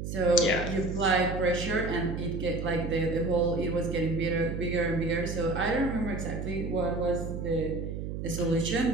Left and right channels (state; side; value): noise; right; hum, 5 dB below the sound